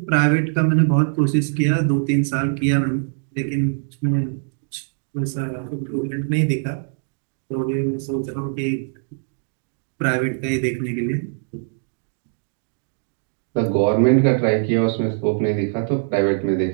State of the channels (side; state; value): left; silent; digital silence